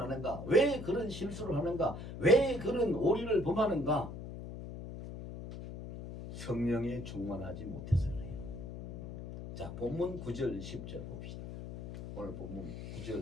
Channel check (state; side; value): noise; left; hum, 9 dB below the sound